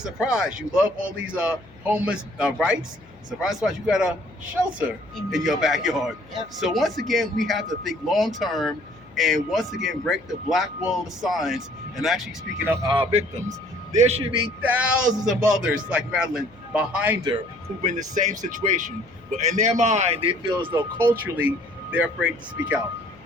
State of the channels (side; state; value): left; noise; hum, 26 dB below the sound